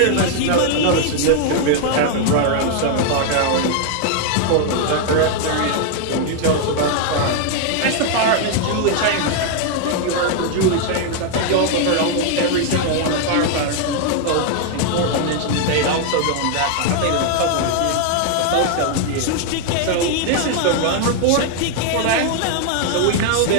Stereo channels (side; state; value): both; different; correlation 0.00